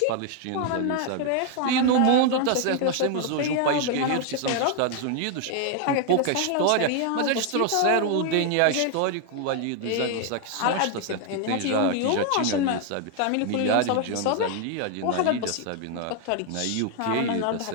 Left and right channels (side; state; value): both; different; correlation 0.00